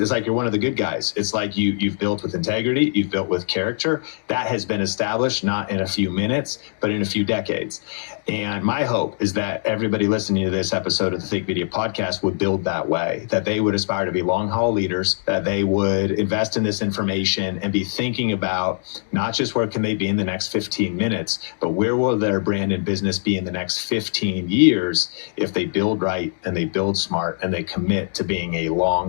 like you're one of the good guys. It's like you've built with integrity, you've built with character. That has been established not in a few minutes, but in a few decades. And my hope is that everybody listening to this episode of the Think Media podcast would build that way, that they would aspire to be long haul leaders, that they would invest in this information and be thinking about not just where can they be in the next 15 minutes, but where will their brand and business be in the next 15 years if they build right and they build smart and they commit to being a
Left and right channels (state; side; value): silent; right; 61 dB below the other